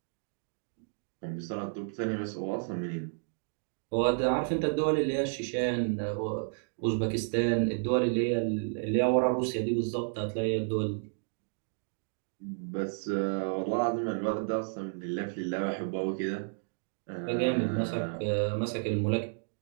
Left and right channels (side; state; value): left; silent; digital silence